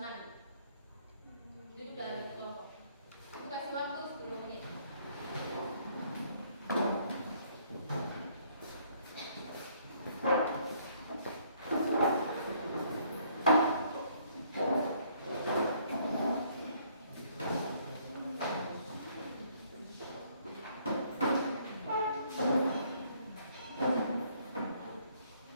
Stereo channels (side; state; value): both; inverted; correlation -0.64